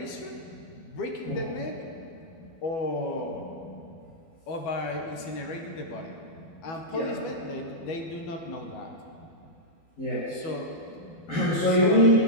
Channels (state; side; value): late; right; 12 ms